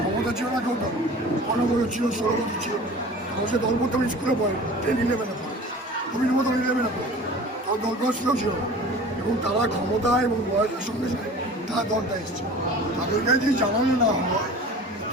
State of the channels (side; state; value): both; normal; correlation 0.41